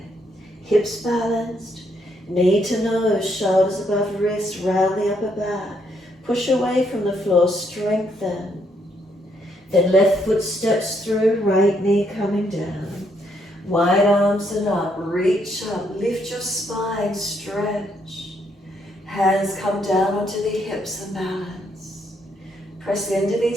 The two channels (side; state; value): both; normal; correlation 0.74